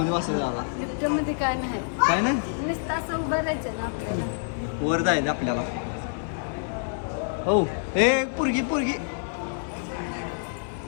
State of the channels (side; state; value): right; silent; 60 dB below the other